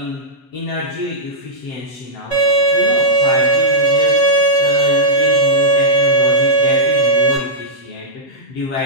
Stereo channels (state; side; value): late; right; 7.8 ms